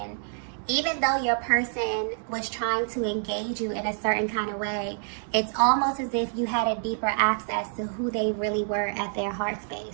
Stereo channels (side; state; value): left; silent; digital silence